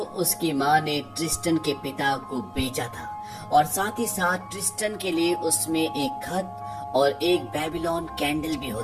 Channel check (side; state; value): both; identical; correlation 1.00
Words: माँ ने ट्रिस्टन के पिता को बेचा था, और साथ ही साथ ट्रिस्टन के लिए उसमें एक खत और एक बेबीलोन कैंडल भी